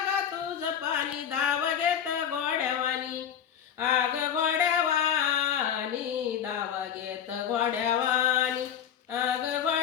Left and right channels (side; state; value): right; quieter; 8.8 dB